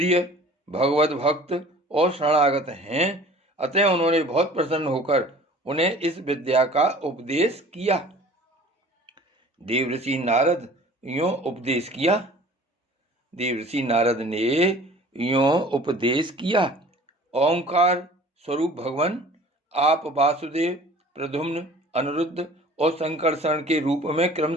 भगवत भक्त और शरणागत हैं, अतः उन्होंने बहुत प्रसन्न होकर उन्हें इस विद्या का उपदेश किया। देवर्षि नारद यों उपदेश किया। देवर्षि नारद ने यों उपदेश किया। ओंकार स्वरूप भगवान आप वासुदेव, प्रद्युम्न, अनिरुद्ध और संकर्षण के रूप में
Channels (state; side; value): normal; both; correlation 0.47